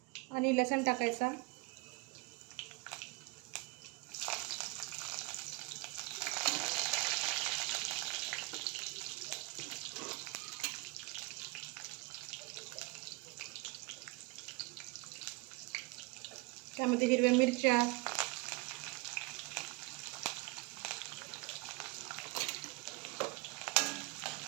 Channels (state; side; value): quieter; left; 25.5 dB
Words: आणि लसूण टाकायचा. त्यामध्ये हिरव्या मिरच्या,